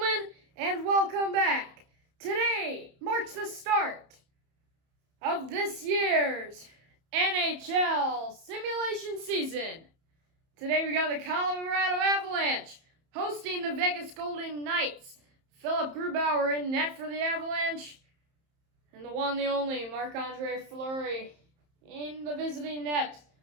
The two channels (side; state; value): left; late; 31 ms